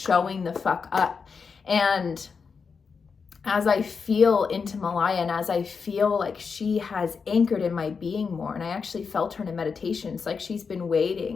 the fuck up. And as I feel into Maliah, and as I feel like she has anchored in my being more, and I actually felt her in a meditation, it's like she's been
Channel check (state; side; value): quieter; right; 5.5 dB